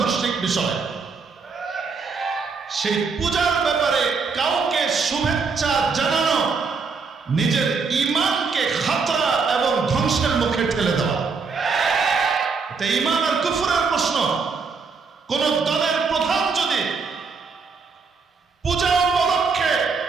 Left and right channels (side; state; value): left; quieter; 4.9 dB